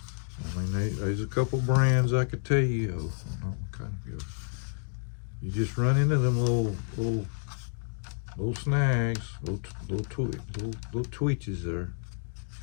I mean, there's a couple brands I could tell you of. Not kind of good. You just run into them little snags, little twitches there.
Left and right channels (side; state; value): right; silent; 58 dB below the other